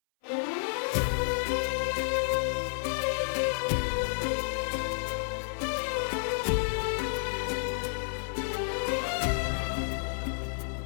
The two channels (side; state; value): right; silent; 57 dB below the other